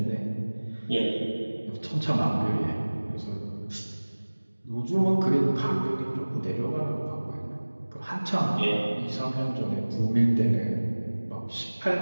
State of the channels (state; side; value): inverted; both; correlation -1.00